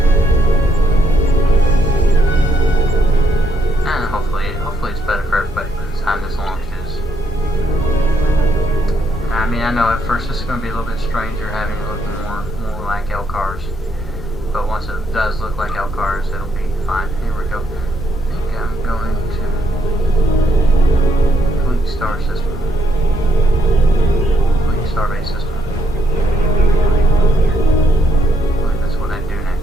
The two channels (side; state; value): both; normal; correlation 0.74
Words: And hopefully it's better for everybody by the time this launches. I mean, I know at first this is going to be a little bit stranger having it look more like LCARS, but once it does look like LCARS, it'll be fine. Here we go. I think